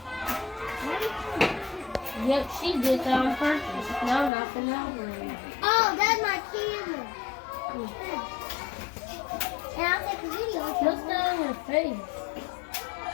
Yep, she did that on purpose. Now nothing over it. Oh, that's my camera. And I'll take a video. What's that on her face?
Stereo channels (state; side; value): drops out; right; at 4.3 s